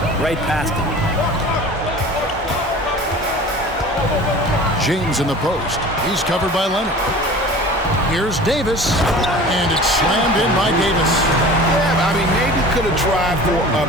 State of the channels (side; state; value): both; normal; correlation 0.41